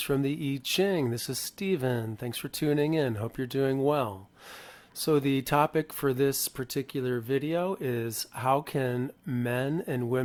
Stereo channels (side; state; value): both; identical; correlation 1.00